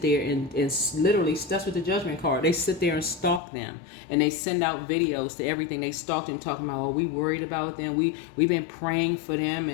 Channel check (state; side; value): drops out; right; at 3.4 s